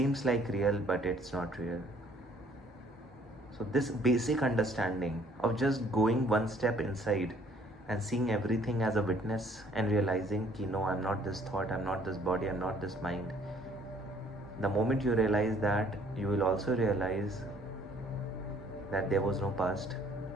like real, but it's not real. So this basic understanding of just going one step inside and seeing everything as a witness and realizing ki no, I'm not this thought, I'm not this body, I'm not this mind. The moment you realize that, you will also realize that there was no past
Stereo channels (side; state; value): both; normal; correlation 0.60